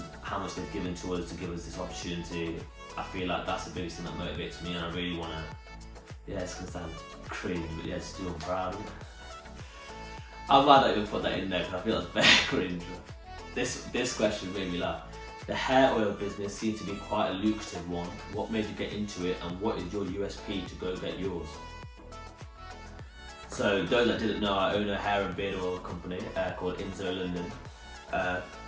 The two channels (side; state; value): both; identical; correlation 1.00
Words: how much they've given to us to give us this opportunity, I feel like that's the biggest thing that motivates me, and I really want to, yeah, it's going to sound crazy, but yeah, just do I'm proud of it. I'm glad I even put that in there because I feel that's very cringe. This question made me laugh. The hair oil business seems to be quite a lucrative one. What made you get into it, and what is your USP to go get yours? So those that didn't know, I own a hair and beard oil company called Inzo London.